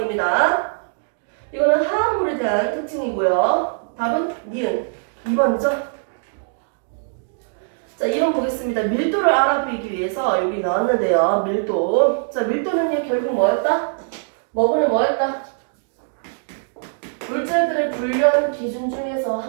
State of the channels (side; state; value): left; silent; digital silence